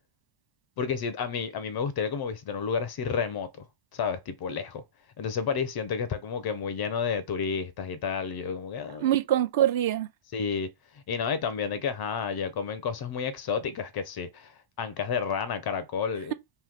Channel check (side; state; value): right; late; 1.0 ms